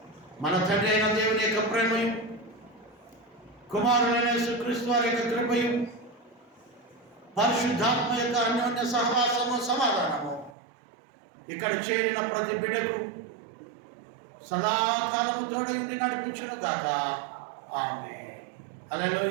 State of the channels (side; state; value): left; drops out; at 10.6 s